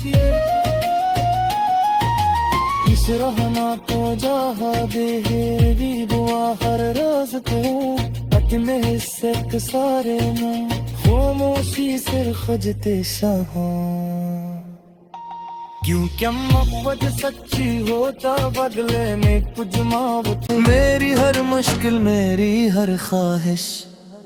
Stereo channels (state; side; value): identical; both; correlation 1.00